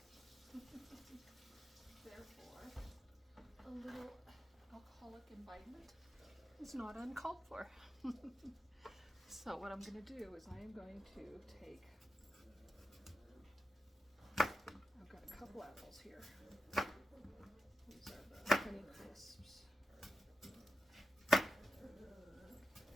Therefore, a little alcoholic imbibement is not uncalled for. So what I'm going to do is I am going to take, I've got a couple apples here. These are the Honey Crisps.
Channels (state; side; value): normal; both; correlation 0.89